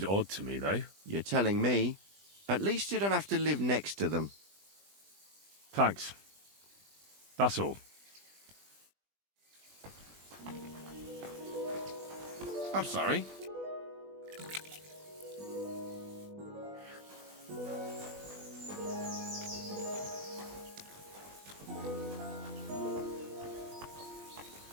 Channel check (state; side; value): late; left; 20 ms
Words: odd to me, though. You're telling me? At least you don't have to live next to them. Thanks. That's all. I'm sorry.